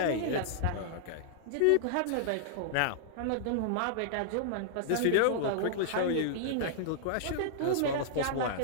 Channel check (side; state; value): both; different; correlation -0.01